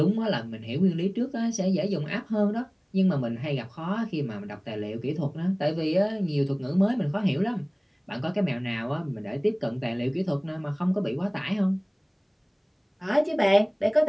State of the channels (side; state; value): both; identical; correlation 1.00